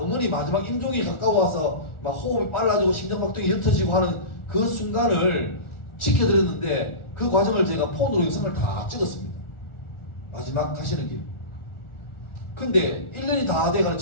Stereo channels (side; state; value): right; late; 1.4 ms